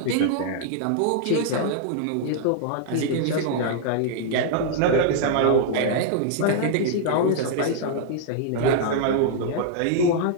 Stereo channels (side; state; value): both; different; correlation -0.01